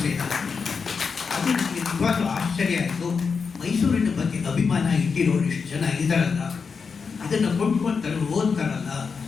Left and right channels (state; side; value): quieter; right; 5.4 dB